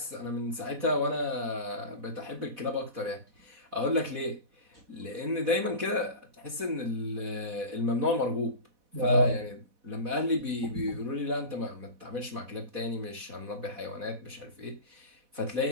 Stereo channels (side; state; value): left; late; 4.1 ms